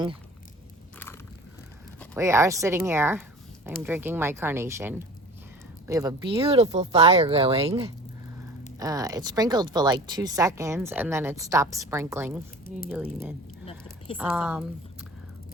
We are sitting here. I'm drinking my carnation. We have a beautiful fire going. It sprinkled for like 2 seconds and then it stopped sprinkling.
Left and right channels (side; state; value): both; normal; correlation 0.40